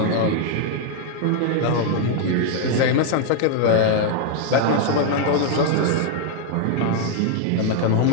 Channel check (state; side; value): different; both; correlation 0.00